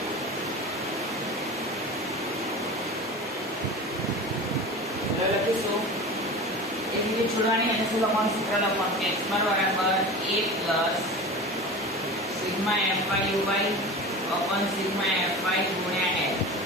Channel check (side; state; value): both; normal; correlation 0.32